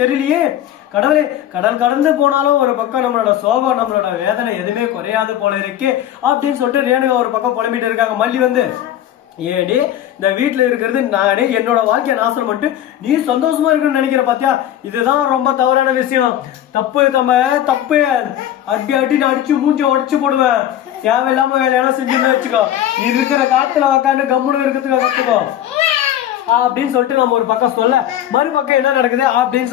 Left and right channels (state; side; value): quieter; right; 11.5 dB